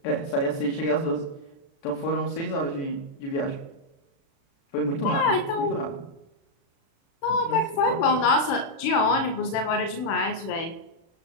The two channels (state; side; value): late; right; 36 ms